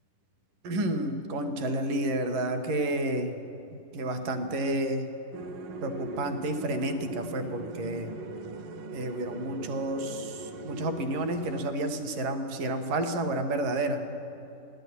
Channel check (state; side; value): late; left; 11 ms